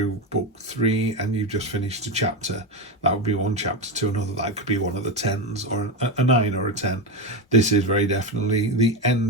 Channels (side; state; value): both; normal; correlation 0.14